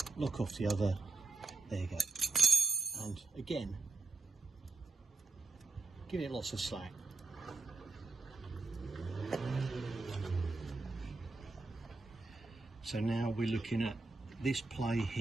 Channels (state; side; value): quieter; left; 3.6 dB